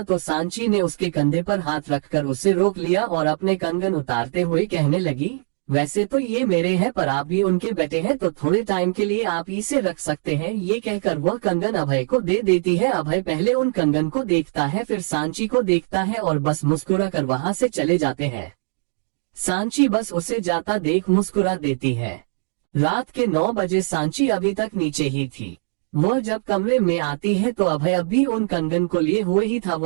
तो सांची ने उसके कंधे पर हाथ रखकर उसे रोक लिया और अपने कंगन उतारते हुए कहने लगी, वैसे तो ये मेरे हैं पर आप भी उनके बेटे हैं तो थोड़े टाइम के लिए आप इसे रख सकते हैं। ये कहकर वह कंगन अभय को दे देती है। अभय पहले उन कंगन को देखता है, फिर सांची को देखता है और बस मुस्कुरा कर वहां से चले जाते हैं। सांची बस उसे जाता देख मुस्कुरा देती है। रात के 9 बजे सांची अभी तक नीचे ही थी। वह जब कमरे में आती है तो अभय अभी उन कंगन को लिए हुए ही था,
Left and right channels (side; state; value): left; silent; digital silence